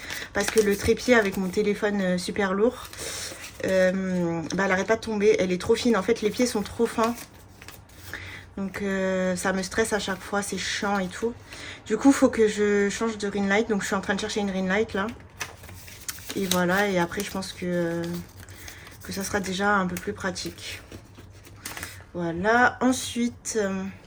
parce que le trépied avec mon téléphone super lourd, elle n'arrête pas de tomber. Elle est trop fine. En fait, les pieds sont trop fins. Donc, ça me stresse à chaque fois. C'est chiant et tout. Du coup, il faut que je change de ring light. Donc, je suis en train de chercher une ring light là. Et voilà. Et après, je pense que ça sera déjà un peu plus pratique. Voilà. Ensuite,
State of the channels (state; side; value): identical; both; correlation 1.00